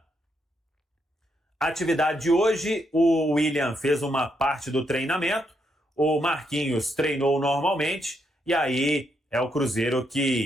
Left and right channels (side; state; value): both; normal; correlation 0.78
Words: atividade de hoje, o William fez uma parte do treinamento, o Marquinhos treinou normalmente, e aí é o Cruzeiro